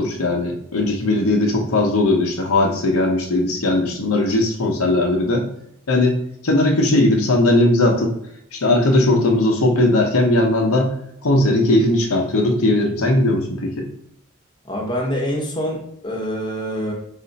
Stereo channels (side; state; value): both; normal; correlation 0.41